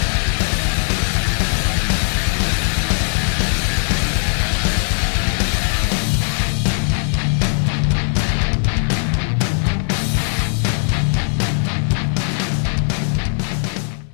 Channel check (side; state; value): right; silent; 61 dB below the other